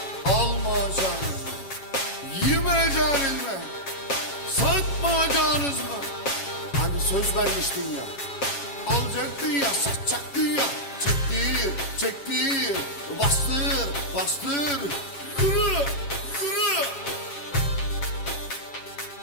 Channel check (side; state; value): right; late; 7.4 ms